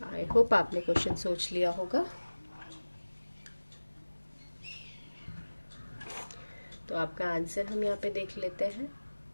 आई होप आपने क्वेश्चन सोच लिया होगा। तो आपका आंसर हम यहाँ पे देख लेते हैं।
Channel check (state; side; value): inverted; both; correlation -1.00